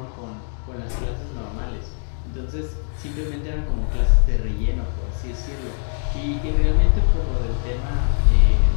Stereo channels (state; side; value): silent; right; 64 dB below the other